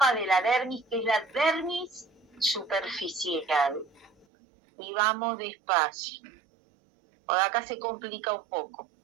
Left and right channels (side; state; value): left; drops out; at 4.2 s